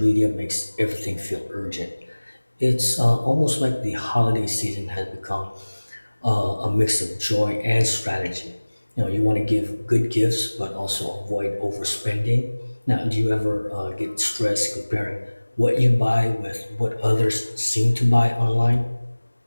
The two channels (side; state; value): both; inverted; correlation -1.00